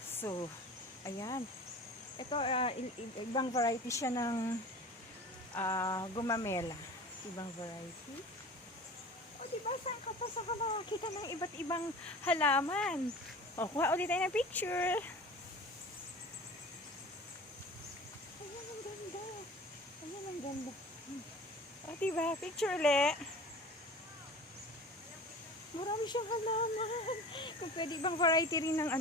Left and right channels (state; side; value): normal; both; correlation 0.39